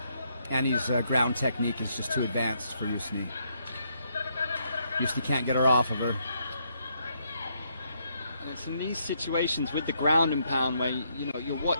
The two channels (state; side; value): inverted; both; correlation -0.75